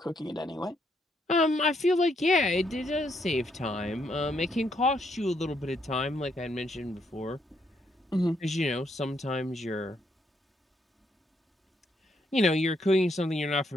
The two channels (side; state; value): both; normal; correlation 0.74